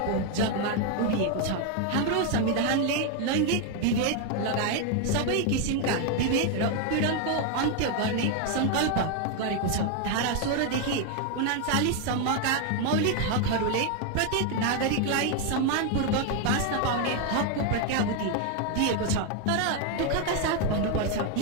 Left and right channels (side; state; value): both; different; correlation 0.01